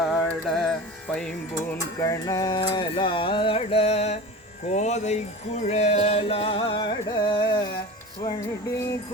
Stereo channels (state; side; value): normal; both; correlation 0.33